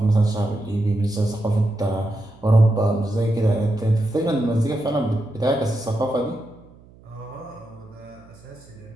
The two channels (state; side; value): noise; right; hum, 25 dB below the sound